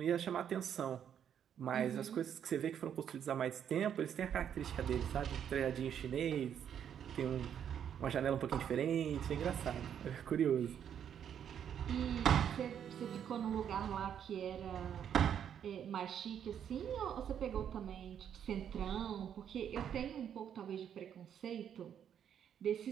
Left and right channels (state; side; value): quieter; left; 8.9 dB